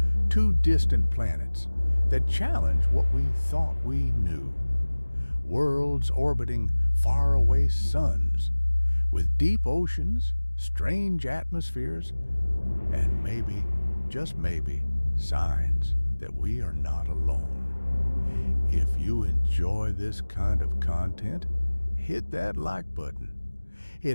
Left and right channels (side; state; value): both; inverted; correlation -1.00